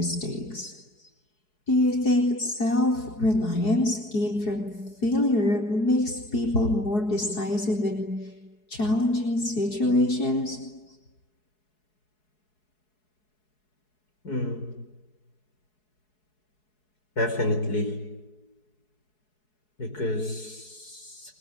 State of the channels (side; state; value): right; late; 4.7 ms